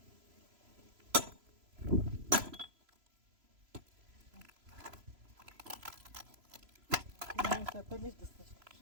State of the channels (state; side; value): late; left; 3.0 ms